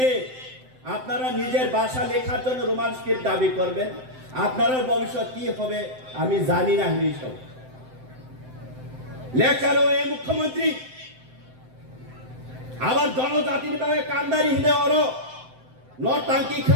আপনারা নিজের ভাষা লেখার জন্য রোমান স্ক্রিপ্ট দাবি করবেন আপনার ভবিষ্যৎ কি হবে আমি জানি না হিসব লেখারও এই মুখ্যমন্ত্রী আবার জনজাতির ভাবে কান্দারি হিনে অর টাঙ্কি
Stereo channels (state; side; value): late; left; 7.8 ms